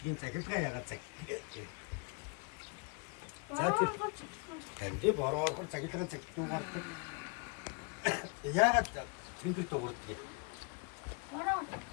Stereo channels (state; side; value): quieter; right; 33.3 dB